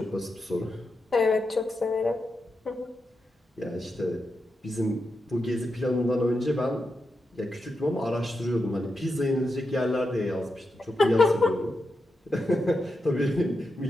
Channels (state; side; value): normal; both; correlation 0.87